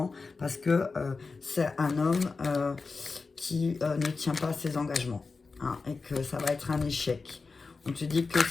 parce que c'est un homme qui ne tient pas à ses engagements. Hein, et que ça va être un échec. On te dit que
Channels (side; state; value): right; quieter; 4.3 dB